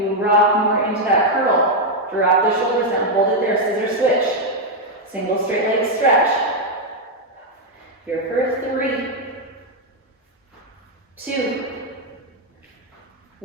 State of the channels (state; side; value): normal; both; correlation 0.01